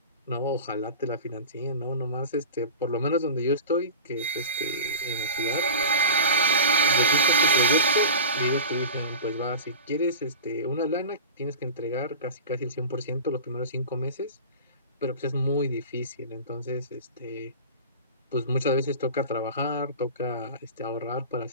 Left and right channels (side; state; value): both; inverted; correlation -0.32